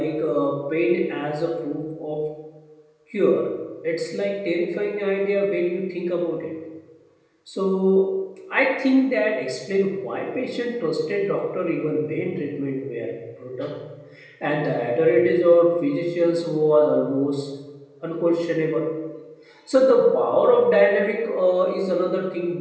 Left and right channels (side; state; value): both; identical; correlation 1.00